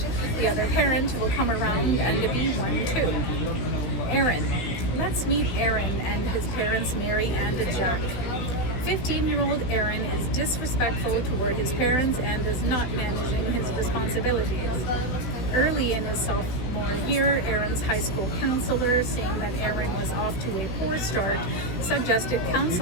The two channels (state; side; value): late; right; 16 ms